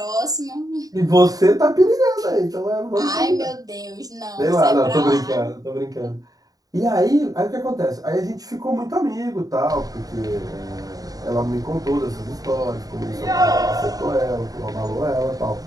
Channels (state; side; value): late; left; 0.18 ms